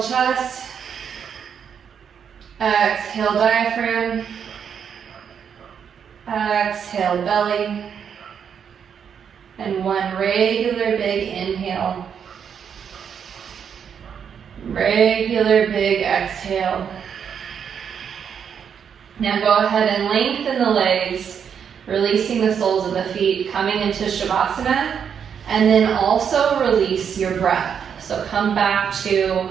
chest. Exhale diaphragm. Exhale belly. And one regular big inhale. Regular big exhale. Now go ahead and lengthen the legs, releasing the soles of the feet, coming into Shavasana, and then also release your breath. So come back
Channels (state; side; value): quieter; left; 7.5 dB